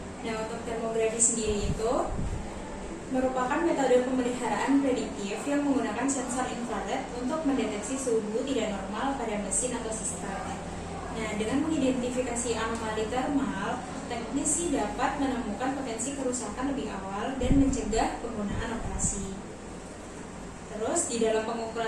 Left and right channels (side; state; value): both; identical; correlation 1.00